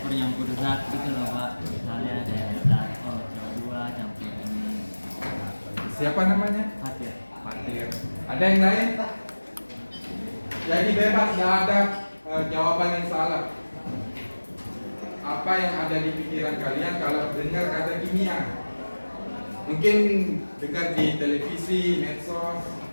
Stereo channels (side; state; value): both; inverted; correlation -1.00